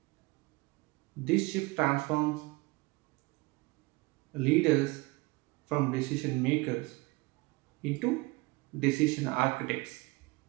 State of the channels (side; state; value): left; quieter; 24.3 dB